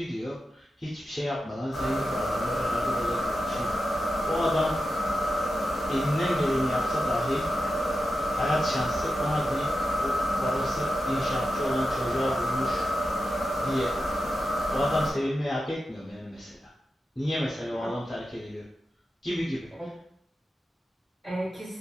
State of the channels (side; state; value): both; normal; correlation 0.90